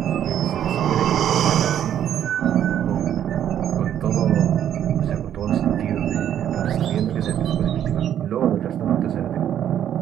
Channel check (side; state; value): left; quieter; 10.2 dB